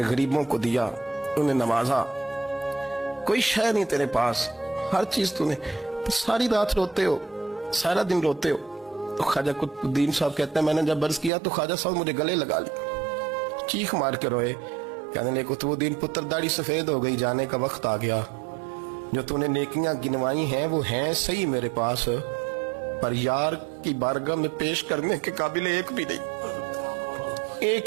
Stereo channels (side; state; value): left; drops out; at 11.3 s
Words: غریبوں کو دیا, انہیں نوازا, کوئی شے نہیں تیرے پاس, ہر چیز تو نے. ساری رات روتے ہو, سارا دن روتے ہو. تو خواجہ قطب الدین صاحب کہتے ہیں میں نے جب عرض کیا تو خواجہ صاحب مجھے گلے لگا لی, چیخ مار کے روئے, کہنے لگے قطب الدین پتر داڑھی سفید ہو گئی, جانے کا وقت آ گیا. جو تو نے نیکیاں گنوائی ہیں وہ ہیں صحیح میرے پاس, پر یار کی بارگاہ میں پیش کرنے کے قابل ایک بھی